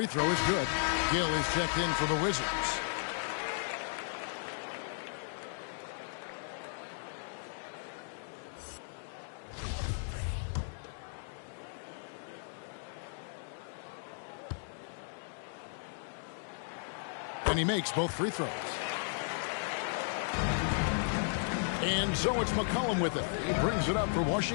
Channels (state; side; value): silent; right; digital silence